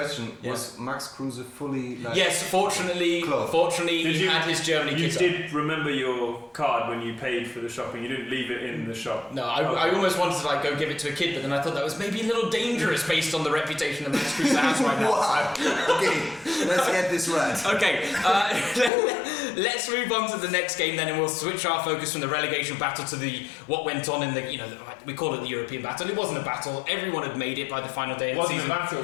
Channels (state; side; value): drops out; right; at 18.9 s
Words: was Max Kruse fully like? yes, fortunately, Did he had his Germany You kit on. did remember your card when you paid for the shopping. You didn't leave it in the shop. No, I almost wanted to go give it to a kid, but then I thought that was maybe a little dangerous based on the reputation that Max Kreuzer has right now. Wow. Okay, let's get this right. Okay, Let's move on to the next game then, and we'll switch our focus from the relegation battle to what went on in the, we call it the European battle. It wasn't a battle. Everyone had made it by the final day of the season. It wasn't